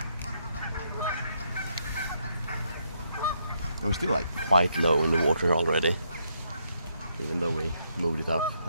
We're still like quite low in the water already, even though we moved it up.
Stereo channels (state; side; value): inverted; both; correlation -0.76